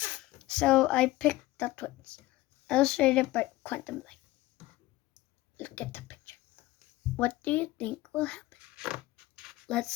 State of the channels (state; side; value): quieter; right; 18.0 dB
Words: So I picked The Twits, illustrated by Quantum Light. Look at the picture. What do you think will happen?